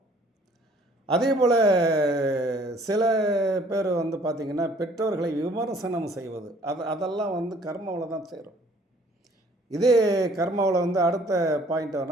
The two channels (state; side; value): normal; both; correlation 0.57